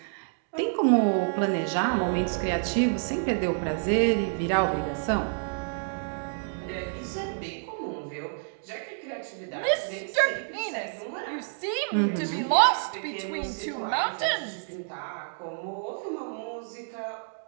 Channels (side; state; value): left; silent; digital silence